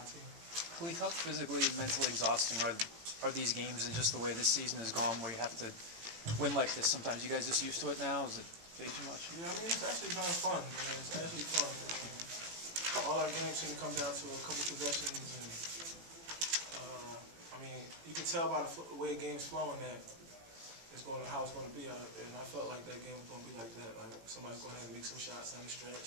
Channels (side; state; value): left; late; 18 ms